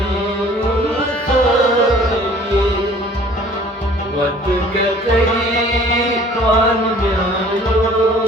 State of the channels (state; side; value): normal; both; correlation 0.52